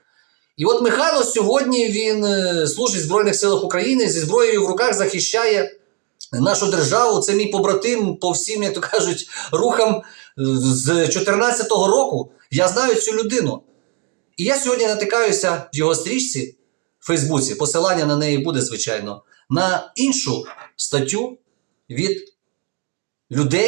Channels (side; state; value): left; quieter; 34.8 dB